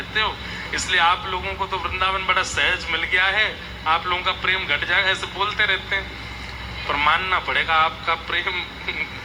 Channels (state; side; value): identical; both; correlation 1.00